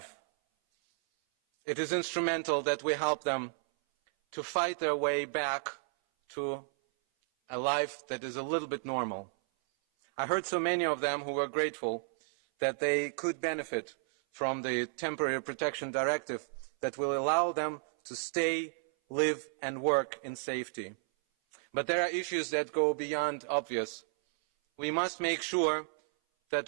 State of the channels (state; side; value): silent; left; 56 dB below the other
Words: It is instrumental that we help them to fight their way back to a life that is a little bit normal. I heard so many of them who were grateful that they could benefit from the Temporary Protection Directive that will allow them to stay, live, and work in safety. But there are issues that go beyond obvious. We must make sure